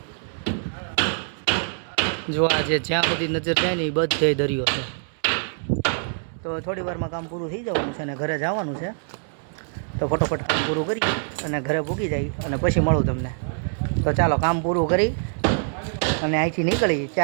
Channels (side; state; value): left; silent; 62 dB below the other